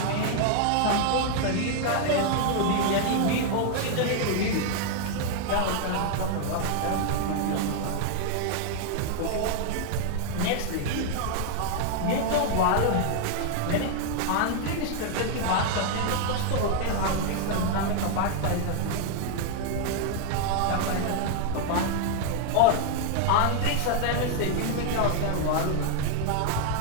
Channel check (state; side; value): different; both; correlation 0.00